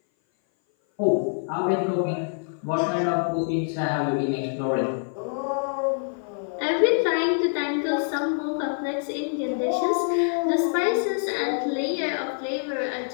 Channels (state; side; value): silent; right; 57 dB below the other